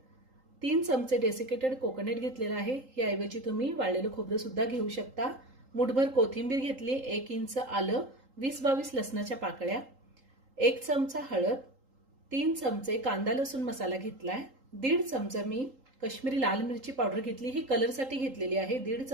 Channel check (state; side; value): late; left; 3.8 ms